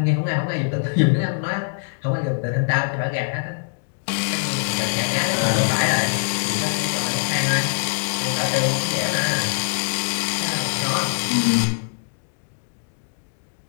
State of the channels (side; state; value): right; silent; digital silence